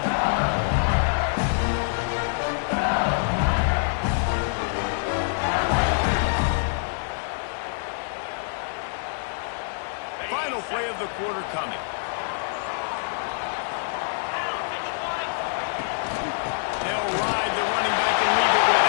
Final play of the quarter coming. They'll ride the running back and leave it with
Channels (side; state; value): right; silent; digital silence